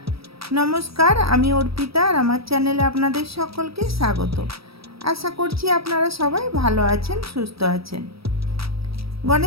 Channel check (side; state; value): left; late; 0.76 ms